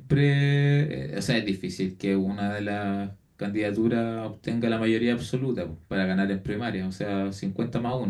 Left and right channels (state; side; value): identical; both; correlation 1.00